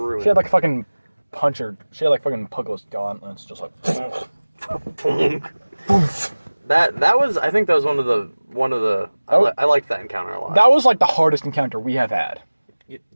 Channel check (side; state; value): both; inverted; correlation -1.00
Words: She had like fucking puncher. She had like fucking Puggless gauntlets, just like. that was. I think that was one of the. I liked that encounter a lot. That was like the hardest encounter we have had.